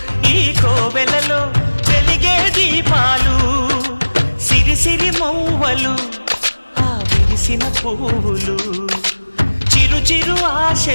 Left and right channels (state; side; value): inverted; both; correlation -1.00